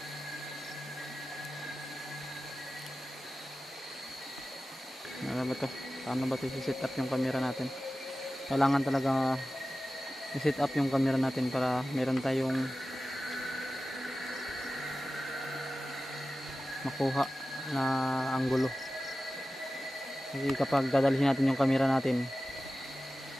Ano ba to? Paano ba ito i-set up yung camera natin? Kailangan talaga i-set up yung camera natin para meron tayong makuha na anggulo. Kasi kapag dadalhin natin yung camera natin,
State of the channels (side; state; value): both; normal; correlation 0.95